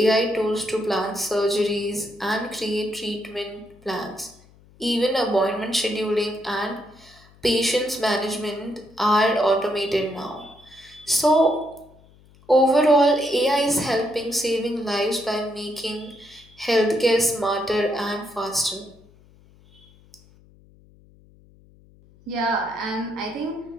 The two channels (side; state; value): left; noise; hum, 27 dB below the sound